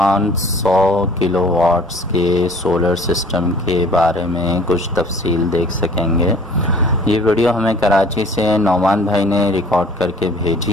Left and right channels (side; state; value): both; normal; correlation 0.51